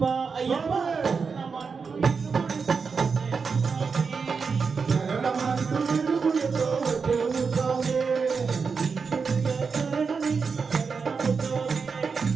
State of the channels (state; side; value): quieter; left; 5.3 dB